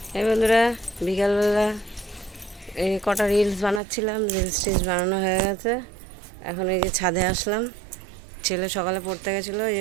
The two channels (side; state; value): left; drops out; at 3.8 s